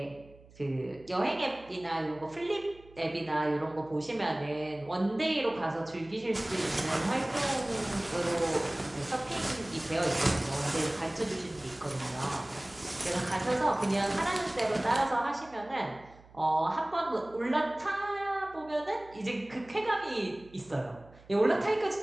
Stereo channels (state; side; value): noise; right; hum, 24 dB below the sound